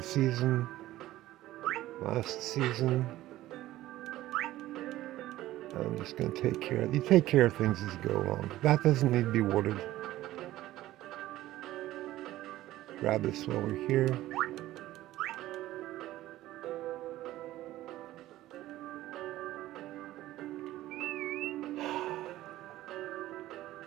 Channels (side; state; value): left; quieter; 15.4 dB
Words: season, last season. I'm just going to take care of. You take care of things as you go along. That doesn't need to be watered. Grab this while we're here.